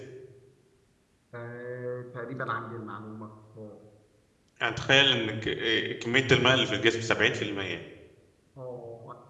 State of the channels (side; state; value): both; identical; correlation 1.00